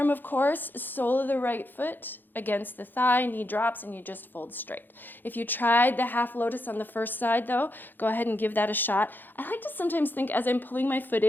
of course, sole of the right foot against the thigh, knee drops, and you just fold straight. If you tried the half lotus on the first side though, go ahead and give that a shot. I like to sometimes think as I'm pulling my foot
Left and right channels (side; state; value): right; late; 0.091 ms